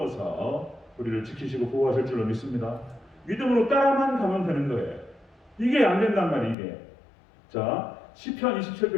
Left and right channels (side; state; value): right; drops out; at 6.6 s